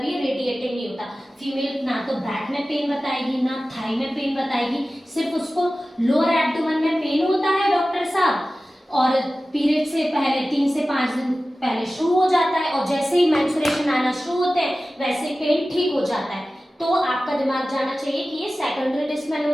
ये रेडिएटिंग नहीं होता। फीमेल ना तो बैक में पेन बताएगी ना थाई में पेन बताएगी, सिर्फ उसको लोअर एब्डोमेन में पेन होता है डॉक्टर साहब, और पीरियड से पहले 3 से 5 दिन पहले शुरू हो जाता है और जैसे ही मेंस्ट्रुएशन आना शुरू होते हैं वैसे पेन ठीक हो जाता है। तो आपका दिमाग जाना चाहिए कि ये सेकेंडरी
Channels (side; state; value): both; normal; correlation 0.96